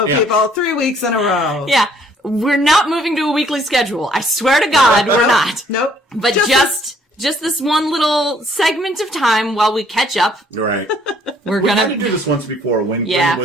Yeah. people. 3 weeks in a row. Yeah. We're not moving to a weekly schedule. I swear to God, we're not. Nope. But just this one little segment of time while we catch up, Right. we're We had to gonna. do this once before when Yeah. Gwyn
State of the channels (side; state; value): both; normal; correlation 0.62